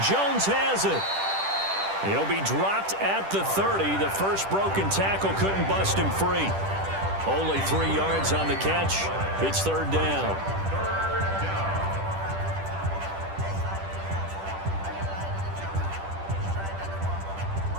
Jones has it. He'll be dropped at the 30. The first broken tackle couldn't bust him free. Only 3 yards on the catch. It's 3rd down.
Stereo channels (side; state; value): left; late; 10 ms